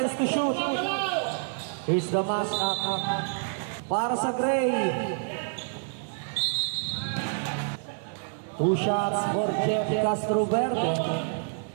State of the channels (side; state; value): left; silent; 59 dB below the other